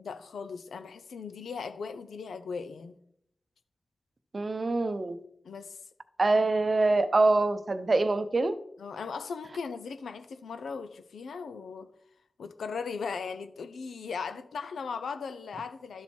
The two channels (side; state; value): both; normal; correlation 0.94